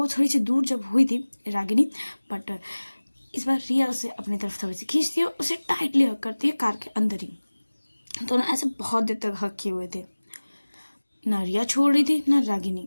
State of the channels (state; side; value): inverted; both; correlation -1.00